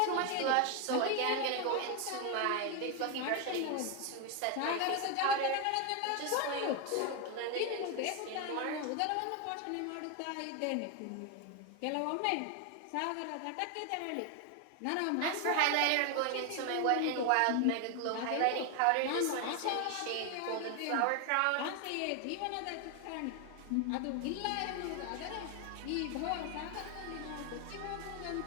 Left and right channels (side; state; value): both; different; correlation 0.01